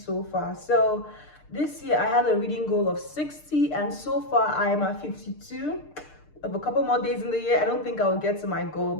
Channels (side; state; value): right; late; 6.6 ms